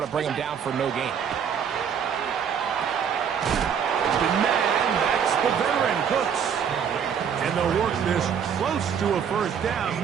to bring him down for no gain. The man, that's the veteran, Cooks. And they'll work this close to a first down,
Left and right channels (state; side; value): quieter; left; 7.6 dB